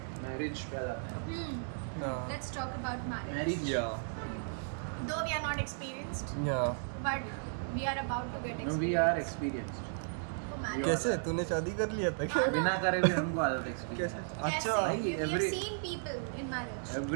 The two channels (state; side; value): silent; left; digital silence